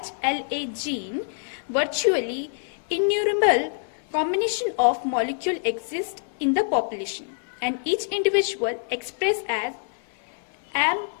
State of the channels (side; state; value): right; silent; 59 dB below the other